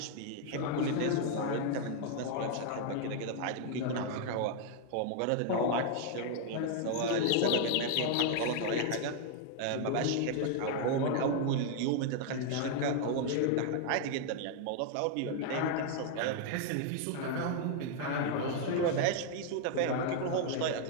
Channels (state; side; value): different; both; correlation 0.00